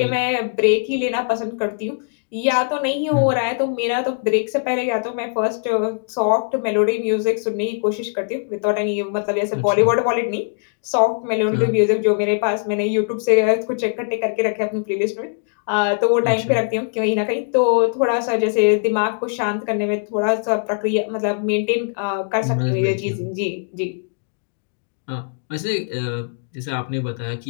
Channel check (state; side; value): silent; right; 63 dB below the other